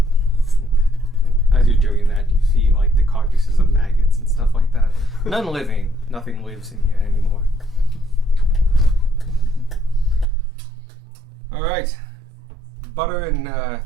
As you're doing that, you see like the carcasses of maggots and stuff like that. None living. Nothing lives in here anymore. All right. Butter and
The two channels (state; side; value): drops out; left; at 10.2 s